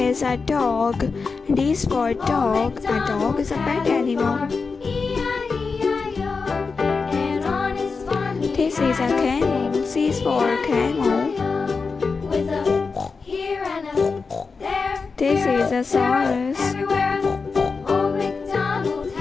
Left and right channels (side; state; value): right; quieter; 4.7 dB